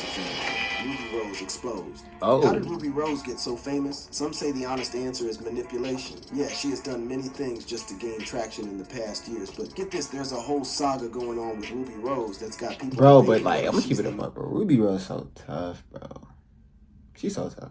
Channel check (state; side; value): identical; both; correlation 1.00